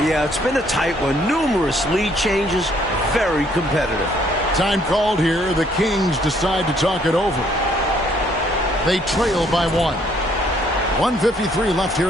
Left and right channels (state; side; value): normal; both; correlation 0.65